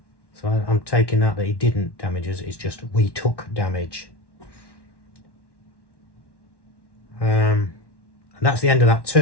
So I'm taking that he didn't damage us, it's just we took damage. And that's the end of that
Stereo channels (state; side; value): late; right; 1.1 ms